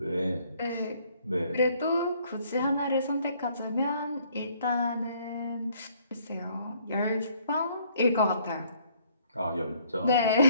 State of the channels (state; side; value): inverted; both; correlation -0.64